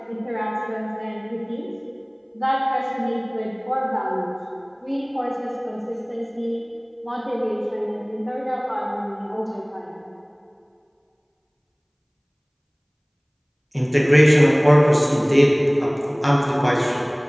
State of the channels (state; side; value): identical; both; correlation 1.00